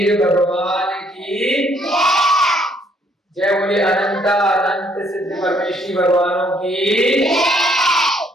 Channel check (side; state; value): both; normal; correlation 0.66